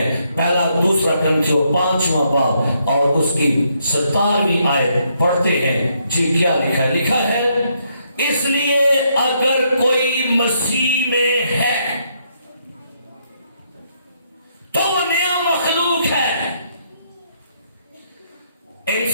پہلا دوسرا کرنتھیوں 5واں باب اور اس کی 17ویں آیت پڑھتے ہیں. جی کیا لکھا ہے؟ لکھا ہے اس لیے اگر کوئی مسیح میں ہے تو وہ نیا مخلوق ہے.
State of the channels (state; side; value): inverted; both; correlation -0.74